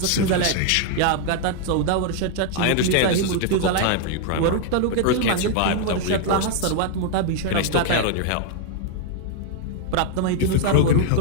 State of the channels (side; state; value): both; different; correlation 0.00